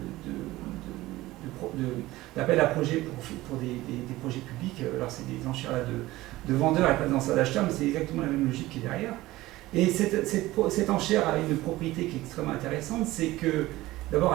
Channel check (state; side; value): quieter; left; 17.8 dB